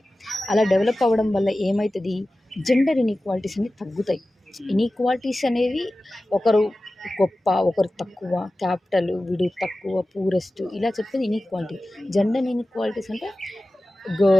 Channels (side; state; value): both; normal; correlation 0.95